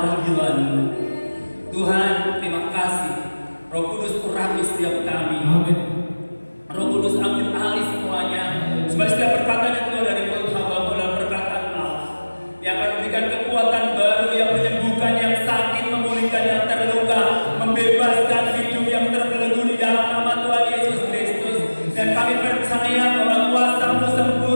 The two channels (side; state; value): both; inverted; correlation -1.00